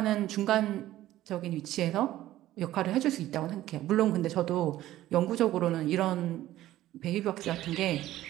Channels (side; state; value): left; quieter; 14.5 dB